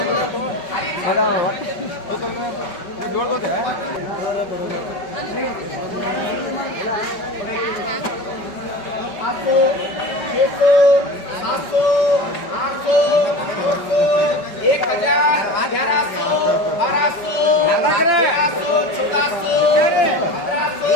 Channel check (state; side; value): late; right; 5.3 ms